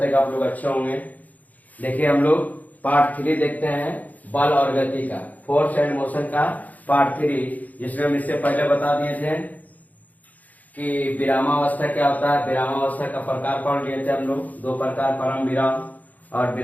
हैं कि आप लोग अच्छे होंगे। देखिए हम लोग पार्ट 3 देखते हैं बल और गति का, फोर्स एंड मोशन का पार्ट 3, जिसमें हम इससे पहले बता दिए थे कि विरामावस्था क्या होता है। विरामावस्था का प्रकार पढ़ लिए थे हम लोग, दो प्रकार, परम विराम और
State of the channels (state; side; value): late; right; 0.078 ms